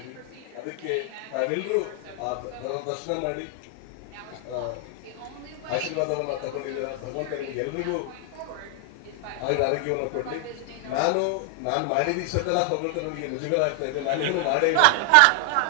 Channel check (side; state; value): both; different; correlation 0.00